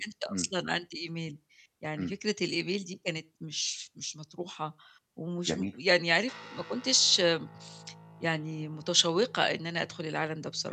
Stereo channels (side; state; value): both; identical; correlation 1.00